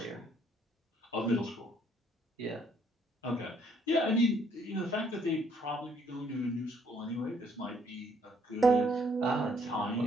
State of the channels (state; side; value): normal; both; correlation 0.66